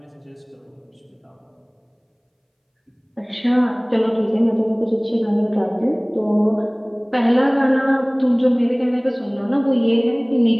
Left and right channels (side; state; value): both; identical; correlation 1.00